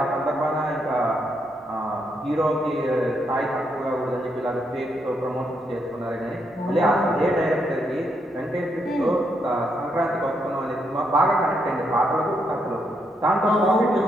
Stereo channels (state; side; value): normal; both; correlation 0.78